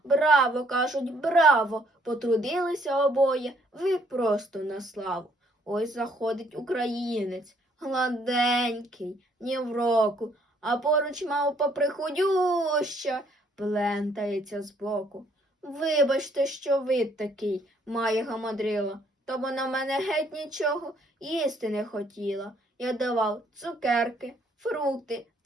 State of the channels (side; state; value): both; normal; correlation 0.66